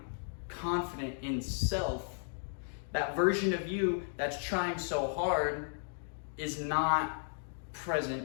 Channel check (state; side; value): silent; right; digital silence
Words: confident in self, that version of you that's trying so hard is not